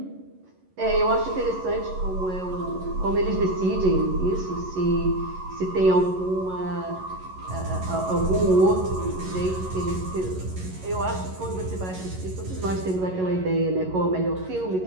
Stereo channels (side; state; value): left; late; 11 ms